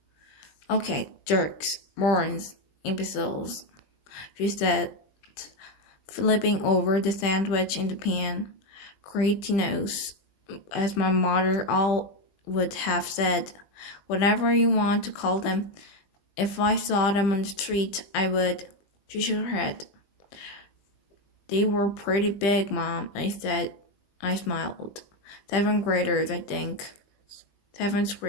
"Okay, jerks, morons, imbeciles," she said, flipping over the sandwich in the pan. "Cretinos," as my mother all would have said. "Whatever you want to call them. If I saw them on the street, I would." She shook her head. "They were pretty big, Mom," I said. I smiled. Seventh graders, I think.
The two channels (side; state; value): right; late; 20 ms